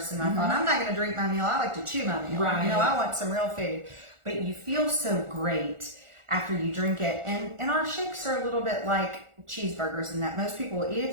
I thought, I'm not going to drink my meal. I like to chew my meal. Right. You know, I want some real food. But you feel so great after you drink it. And our shakes are a little bit like cheeseburgers in that most people will eat a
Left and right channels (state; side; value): late; left; 1.4 ms